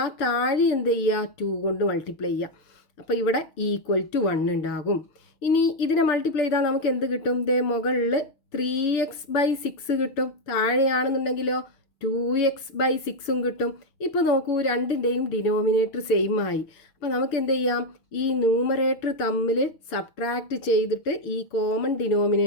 താഴെ എന്ത് ചെയ്യുക? 2 കൊണ്ട് മൾട്ടിപ്ലൈ ചെയ്യുക. അപ്പോൾ ഇവിടെ =1 ഉണ്ടാകും. ഇനി ഇതിനെ മൾട്ടിപ്ലൈ ചെയ്താൽ നമുക്ക് എന്ത് കിട്ടും? ദേ മുകളിൽ 3x/6 കിട്ടും, താഴെയാണെന്നുണ്ടെങ്കിലോ 2x/6 കിട്ടും. ഇപ്പോൾ നോക്കൂ, രണ്ടിൻ്റെയും ഡിനോമിനേറ്റർ സെയിം ആയി. അപ്പോൾ നമുക്ക് എന്ത് ചെയ്യാം? ഈ ന്യൂമറേറ്റർ തമ്മിൽ സബ്ട്രാക്റ്റ് ചെയ്തിട്ട് ഈ കോമൺ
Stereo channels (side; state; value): right; late; 6.8 ms